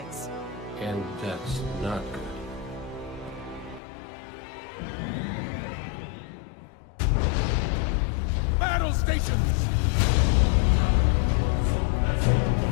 And that's not good. Battle stations!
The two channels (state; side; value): drops out; right; at 3.8 s